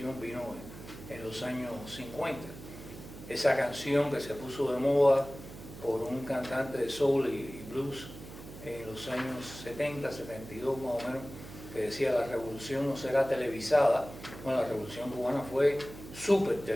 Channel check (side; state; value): right; noise; hum, 14 dB below the sound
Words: vino en los años 50. Esa canción que se puso de moda por un cantante de soul y blues en los años 70, 72 más o menos, que decía: la revolución no será televisada. Bueno, la revolución cubana fue súper